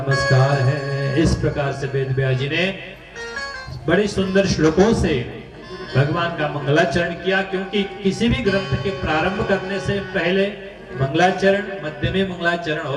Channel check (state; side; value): identical; both; correlation 1.00